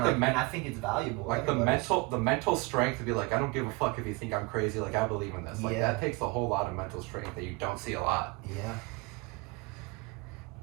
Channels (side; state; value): left; quieter; 26.3 dB